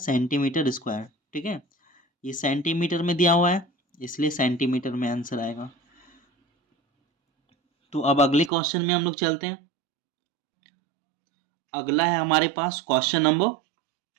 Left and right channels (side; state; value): left; drops out; at 8.5 s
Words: स्क्वायर, ठीक है। ये सेंटीमीटर में दिया हुआ है, इसलिए सेंटीमीटर में आंसर आएगा। तो अब अगले क्वेश्चन में हम लोग चलते हैं। अगला है हमारे पास क्वेश्चन नंबर